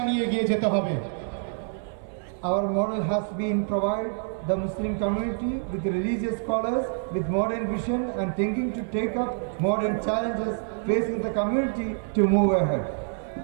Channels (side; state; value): left; silent; 60 dB below the other